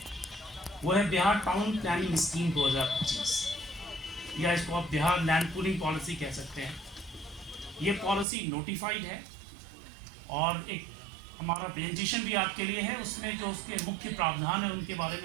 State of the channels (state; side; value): drops out; left; at 8.2 s